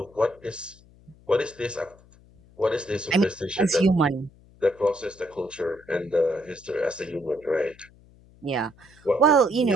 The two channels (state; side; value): noise; left; hum, 26 dB below the sound